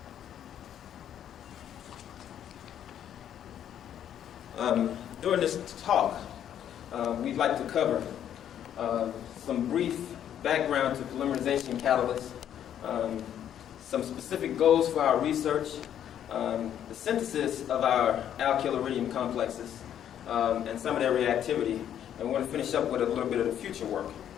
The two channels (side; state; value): right; quieter; 10.0 dB